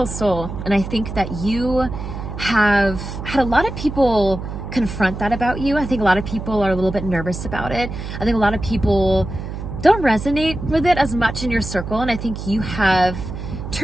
soul. And I think that you have had a lot of people confront that about you. I think a lot of people are a little bit nervous about it. I think a lot of people don't resonate with it as much in your circle. And I think you have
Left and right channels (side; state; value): right; noise; hum, 8 dB below the sound